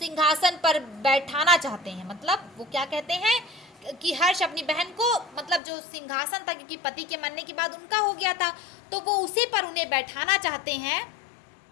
पर बैठाना चाहते हैं, मतलब वो क्या कहते हैं कि हर्ष अपनी बहन को, मतलब जो सिंहासन था, क्योंकि पति के मरने के बाद उनका हो गया था, तो वो उसी पर उन्हें बैठाना चाहते हैं।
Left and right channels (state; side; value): drops out; right; at 5.6 s